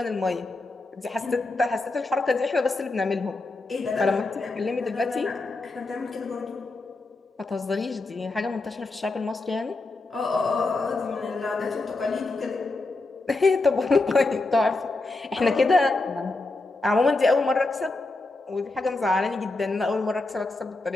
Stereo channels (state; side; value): quieter; right; 3.3 dB